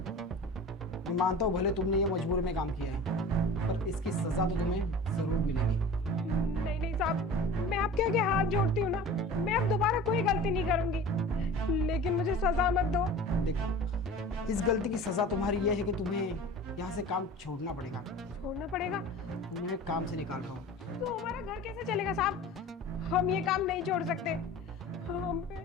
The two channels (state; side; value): normal; both; correlation 0.39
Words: मानता हूँ भले तुमने ये मजबूरी में काम किया है, पर इसकी सजा तो तुम्हें जरूर मिलेगी। नहीं नहीं साहब, मैं आपके आगे हाथ जोड़ती हूँ ना, मैं अब दोबारा कोई गलती नहीं करूंगी, लेकिन मुझे सजा मत दो। देखो, इस गलती की सजा तुम्हारी ये है कि तुम्हें यहाँ से काम छोड़ना पड़ेगा। छोड़ना पड़ेगा? तुम्हें काम से निकाल रहा हूँ। तो हमारा घर कैसे चलेगा साहब? हम ये काम नहीं छोड़ सकते, हम